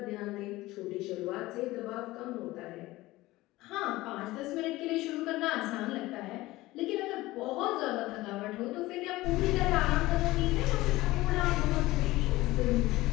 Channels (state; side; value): quieter; right; 18.6 dB